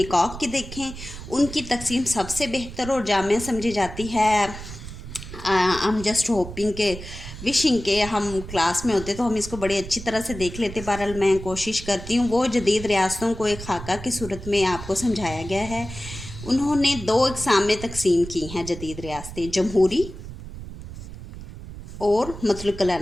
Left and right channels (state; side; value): noise; right; rumble, 12 dB below the sound